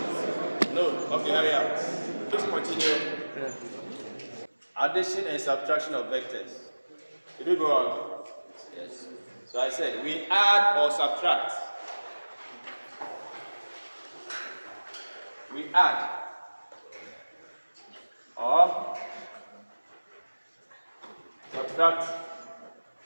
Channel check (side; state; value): both; inverted; correlation -1.00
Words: No? Okay, hurry up. Please continue. Addition and subtraction of vectors. Did we go on? Yes. So I said we add or subtract. We add or subtract